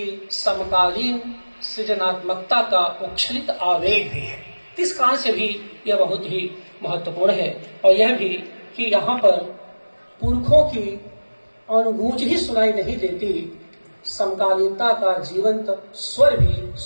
समकालीन सृजनात्मकता का उच्छलित आवेग भी है। इस कारण से भी यह बहुत ही महत्वपूर्ण है। और यह भी कि यहाँ पर पुरखों की अनुगूंज ही सुनाई नहीं देती, समकालीनता का जीवंत स्वर भी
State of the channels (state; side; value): inverted; both; correlation -1.00